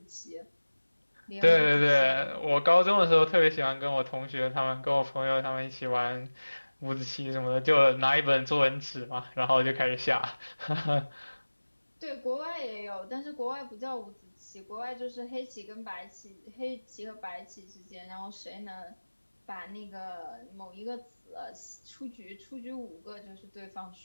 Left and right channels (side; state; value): both; inverted; correlation -1.00